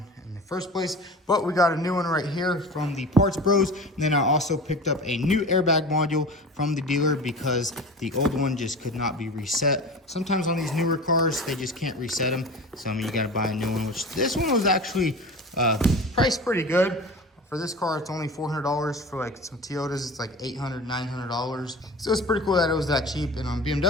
in the first place, but we got a new one right here from the Parts Bros. And then I also picked up a new airbag module from the dealer because the old one just could not be reset. Sometimes on these newer cars, they just can't reset them. So I mean, you gotta buy a new one, which this one was actually priced pretty good. For this car, it's only $400. For like some Toyotas, it's like $800, $900. So it's pretty cool that it was that cheap. And on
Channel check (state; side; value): normal; both; correlation 0.34